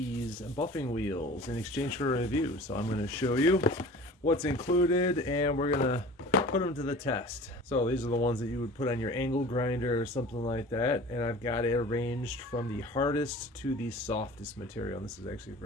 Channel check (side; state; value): both; normal; correlation 0.42